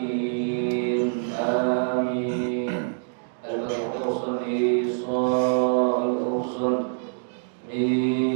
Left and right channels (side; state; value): left; silent; digital silence